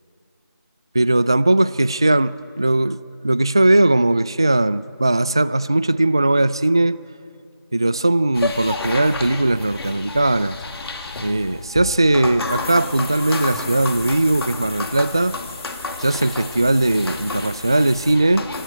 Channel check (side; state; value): both; inverted; correlation -0.92